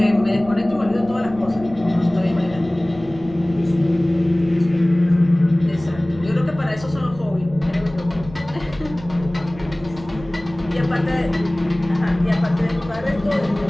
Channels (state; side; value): noise; right; rumble, 17 dB below the sound